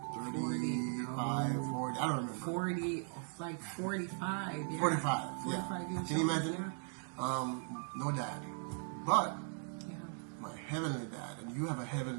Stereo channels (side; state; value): left; silent; 52 dB below the other